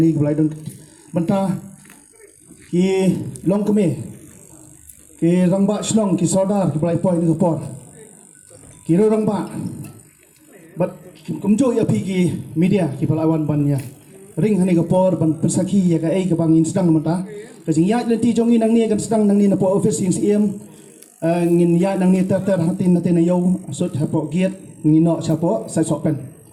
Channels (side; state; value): both; identical; correlation 1.00